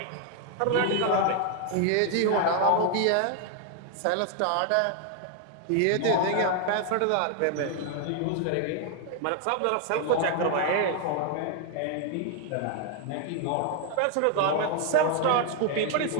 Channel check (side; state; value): both; different; correlation 0.00